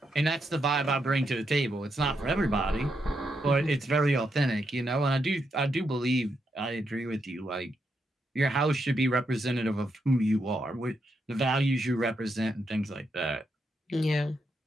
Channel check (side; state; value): both; normal; correlation 0.81